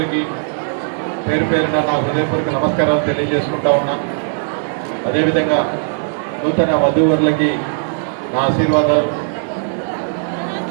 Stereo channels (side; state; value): left; silent; 65 dB below the other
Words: పేరు పేరున నా హృదయపూర్వక నమస్కారాలు తెలియజేసుకుంటా ఉన్నా. అదేవిధంగా నూతన వధూవరులకి నా ఆశీర్వాదాలు.